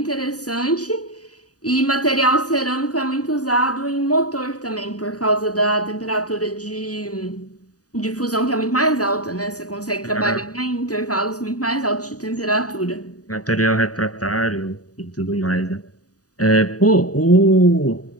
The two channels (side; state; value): right; late; 0.67 ms